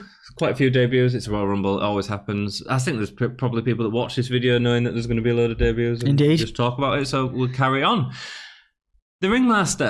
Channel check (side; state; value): both; identical; correlation 1.00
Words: Quite a few debuts. It's a Royal Rumble. It always happens. I think there's probably people that watch this video knowing that there's going to be a load of debuts and Indeed. just talk about it. So we'll carry on. The